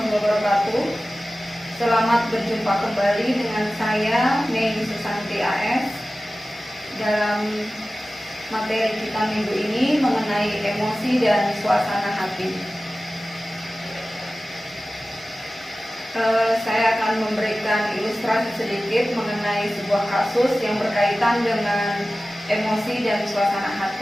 wabarakatuh. Selamat berjumpa kembali dengan saya Mei Susanti AS dalam materi kita minggu ini mengenai emosi dan suasana hati. Saya akan memberikan ilustrasi sedikit mengenai sebuah kasus yang berkaitan dengan emosi dan suasana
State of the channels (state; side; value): normal; both; correlation 0.96